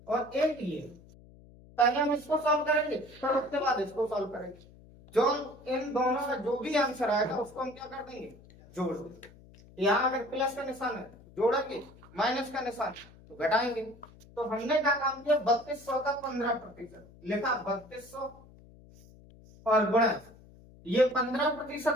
और एक ये। पहले हम इसको सॉल्व करेंगे, फिर उसके बाद इसको सॉल्व करेंगे। जो इन दोनों का जो भी आंसर आएगा उसको हम क्या कर देंगे, जोड़ देंगे। यहाँ अगर प्लस का निशान है जोड़ेंगे, माइनस का निशान तो घटाएंगे। तो हमने क्या काम किया, 3200 का 15% लिखा, 3200 और गुणा, ये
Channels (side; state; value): left; noise; hum, 23 dB below the sound